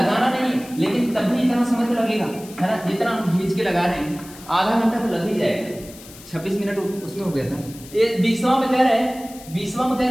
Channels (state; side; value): noise; left; hiss, 19 dB below the sound